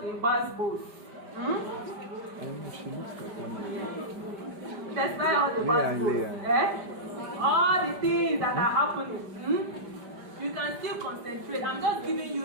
the bad boys, she looks like one. despite all the bad boys, all the things that are happening, you can still concentrate. I'm just giving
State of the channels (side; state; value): left; late; 5.1 ms